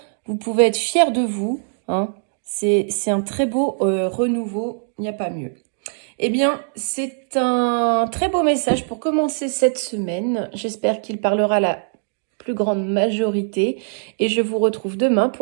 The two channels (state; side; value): silent; left; digital silence